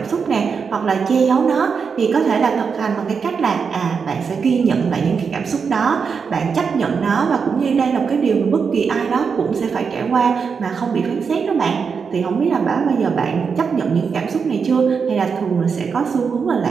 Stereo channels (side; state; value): left; quieter; 5.8 dB